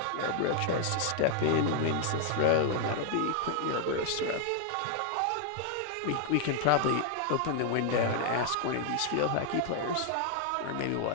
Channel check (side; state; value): both; different; correlation 0.00